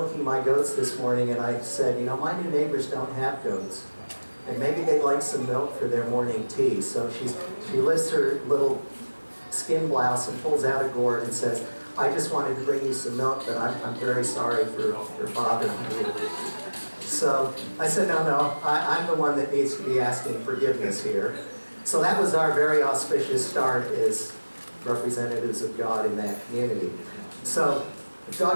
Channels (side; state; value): both; inverted; correlation -1.00